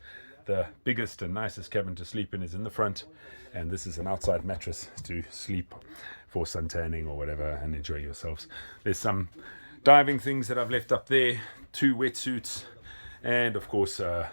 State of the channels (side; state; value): both; inverted; correlation -1.00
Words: The biggest and nicest cabin to sleep in is in the front, and this is an outside mattress to sleep for suntanning or whatever and enjoy yourselves. There's some diving things that I've left up there, 2 wetsuits, and of course a